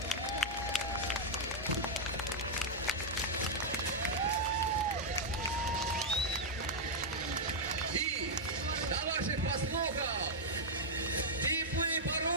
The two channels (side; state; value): both; normal; correlation -0.04